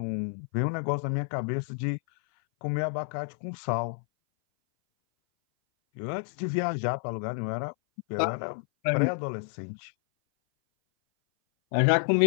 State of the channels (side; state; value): right; silent; 57 dB below the other